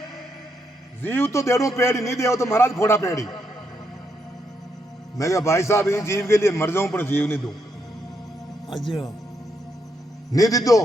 जीव तो देड़ो पेड़ी नहीं दे तो महाराज फोड़ा पेड़ी। मैं क्या भाई साहब इस जीव के लिए मर जाऊं पर जीव नहीं दूं। नहीं दी दो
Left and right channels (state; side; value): normal; both; correlation 0.79